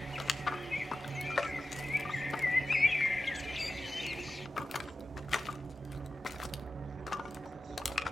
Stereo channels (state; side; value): normal; both; correlation 0.94